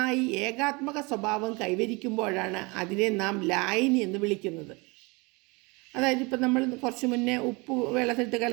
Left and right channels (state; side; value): quieter; left; 27.1 dB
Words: ഏകാത്മക സ്വഭാവം കൈവരിക്കുമ്പോഴാണ് അതിനെ നാം ലായനി എന്ന് വിളിക്കുന്നത്. അതായത് ഇപ്പം നമ്മൾ കുറച്ച് മുന്നേ ഉപ്പ് വെള്ളത്തിലിട്ട്